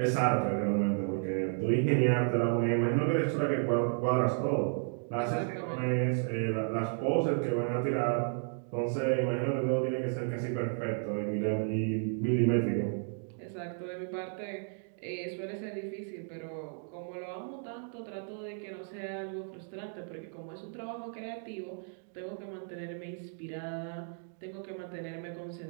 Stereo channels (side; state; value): left; silent; 56 dB below the other